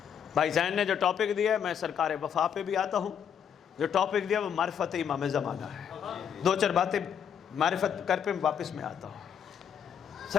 بھائی زین نے جو ٹاپک دیا ہے، میں سرکار وفا پہ بھی آتا ہوں، جو ٹاپک دیا وہ معرفت امام زمانہ ہے۔ دو چار باتیں معرفت کر پہ واپس میں آتا ہوں۔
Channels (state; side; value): quieter; right; 8.1 dB